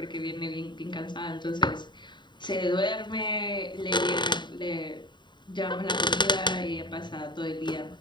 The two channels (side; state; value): right; late; 0.22 ms